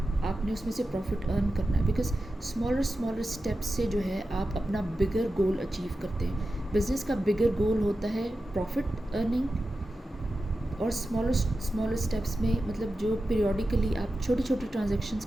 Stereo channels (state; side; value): normal; both; correlation 0.92